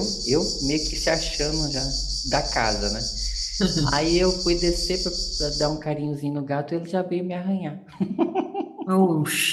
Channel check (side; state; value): both; identical; correlation 1.00